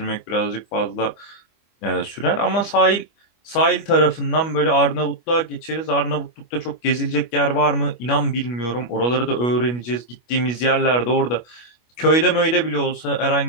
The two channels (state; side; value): late; right; 25 ms